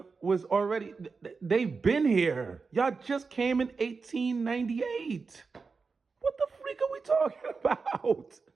was already, they've been here. Y'all just came in 1898. What the freak are we talking about?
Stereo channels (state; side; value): quieter; left; 4.7 dB